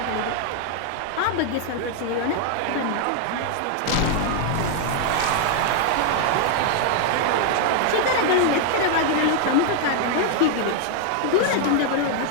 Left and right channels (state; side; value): different; both; correlation 0.00